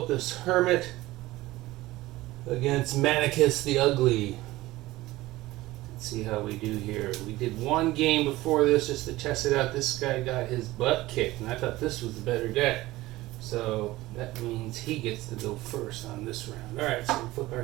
Hermit against Manicus the Ugly. Let's see how we do here. We did one game before this just to test it out. This guy got his butt kicked, and I thought this was the better deck. So that means he gets to go first on this round. Alright, so we flip our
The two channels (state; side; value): quieter; left; 18.1 dB